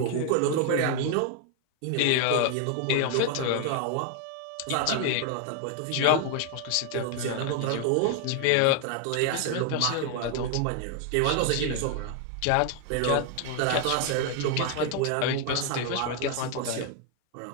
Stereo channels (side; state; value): both; different; correlation 0.00